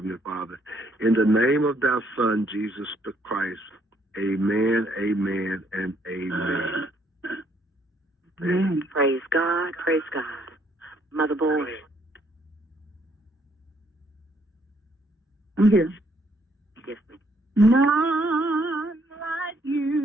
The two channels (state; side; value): normal; both; correlation 0.68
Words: Father. In the name of thy Son, Jesus the Christ, amen, amen, and amen. Praise God, praise God. Mother Boy. I'm here. Yes, ma'am. None like